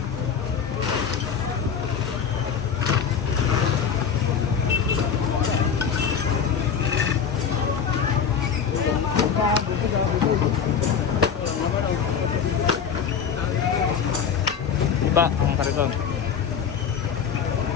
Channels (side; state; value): right; quieter; 7.1 dB